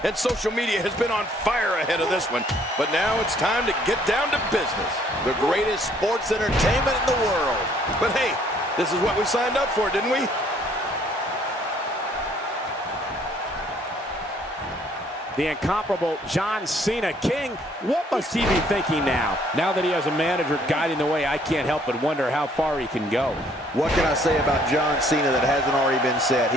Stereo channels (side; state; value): both; normal; correlation 0.63